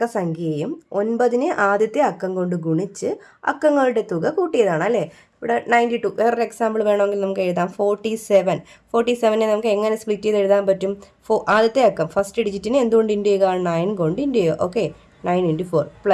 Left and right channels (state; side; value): identical; both; correlation 1.00